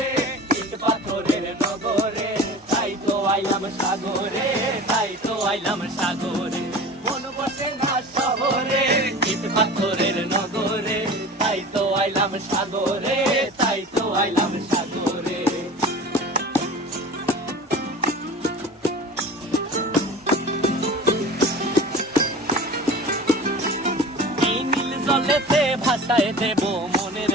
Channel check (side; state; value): both; normal; correlation 0.37